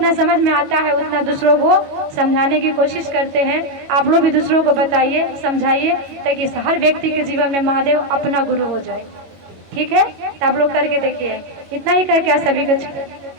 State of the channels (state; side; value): late; left; 22 ms